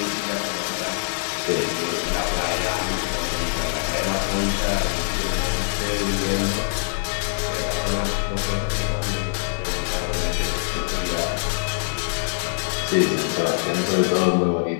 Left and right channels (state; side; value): silent; right; digital silence